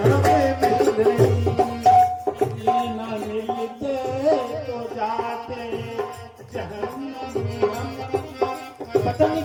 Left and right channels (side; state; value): both; identical; correlation 1.00